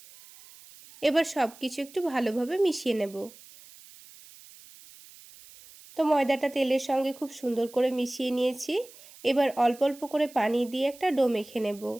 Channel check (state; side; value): noise; right; hiss, 21 dB below the sound